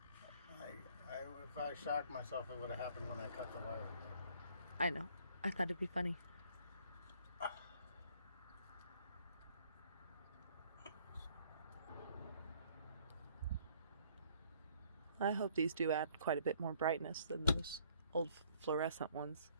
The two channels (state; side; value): inverted; both; correlation -0.61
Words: If I shocked myself, it would have happened when I cut the wire. I know. I thought it'd be funny. I hope these do add quite a bit more brightness than those old fluorescent ones.